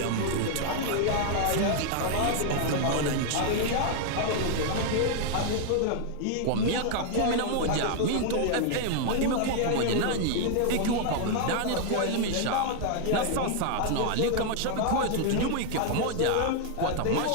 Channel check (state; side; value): different; both; correlation 0.00